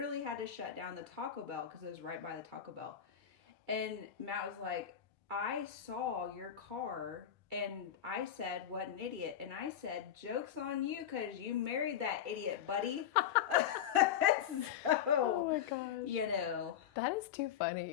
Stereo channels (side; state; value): right; quieter; 9.5 dB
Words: had to shut down the Taco Bell because it was right by the Taco Bell. And Matt was like, "I saw your car." And I said, "What an idiot." And I said, "Joke's on you because you married that idiot, buddy." Oh my gosh. That is too